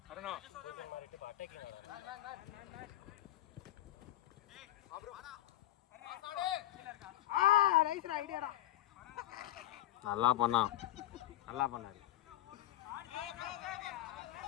அருணா நல்லா பண்ணான் நல்லா பண்ணாரு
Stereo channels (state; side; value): quieter; right; 14.5 dB